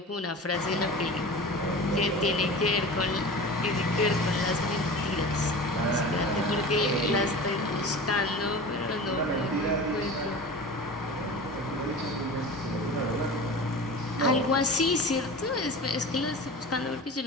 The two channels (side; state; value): both; normal; correlation 0.34